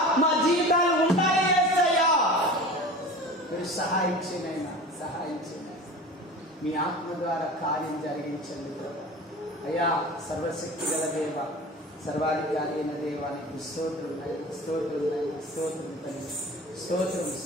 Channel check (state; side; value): normal; both; correlation 0.36